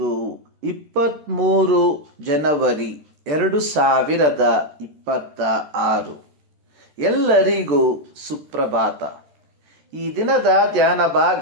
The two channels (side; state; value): left; late; 13 ms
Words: 23 ಜನವರಿ 2026. ಎಲ್ಲರಿಗೂ ಸುಪ್ರಭಾತ. ಈ ದಿನದ ಧ್ಯಾನ